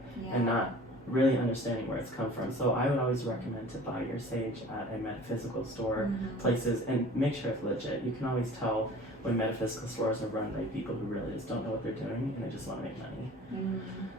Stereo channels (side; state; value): both; normal; correlation 0.45